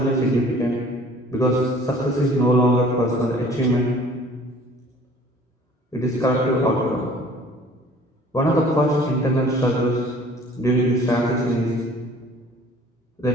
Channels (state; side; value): normal; both; correlation 0.52